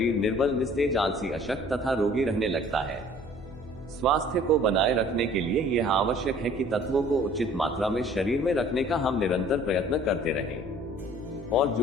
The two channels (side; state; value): left; noise; hum, 17 dB below the sound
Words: निर्बल, निस्तेज, आलसी, अशक्त तथा रोगी रहने लगता है। स्वास्थ्य को बनाए रखने के लिए यह आवश्यक है कि तत्वों को उचित मात्रा में शरीर में रखने का हम निरंतर प्रयत्न करते रहें और